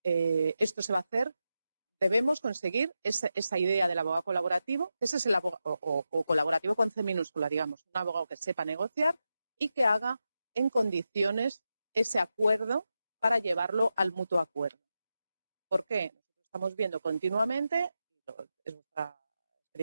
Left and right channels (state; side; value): inverted; both; correlation -0.89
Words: esto se va a hacer. Debemos conseguir esa idea del abogado colaborativo. Ese es el abogado, o colaborativo con C minúscula, digamos, un abogado que sepa negociar y que haga en condiciones ese acuerdo para llevarlo al mutuo acuerdo. ¿Por qué? Nosotros estamos viendo continuamente, es vuestra